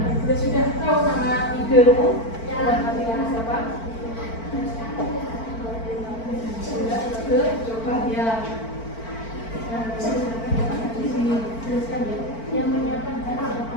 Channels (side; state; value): right; late; 4.5 ms